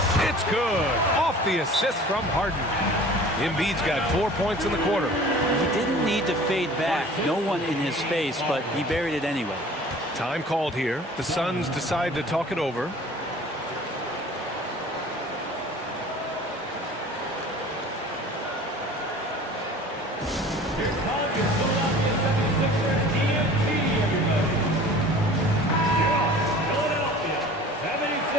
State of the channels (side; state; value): both; normal; correlation 0.45